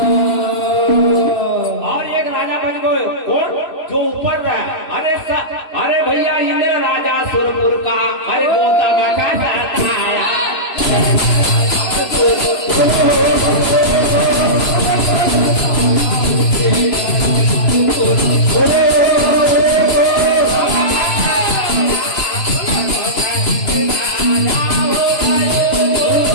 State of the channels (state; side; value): late; right; 3.0 ms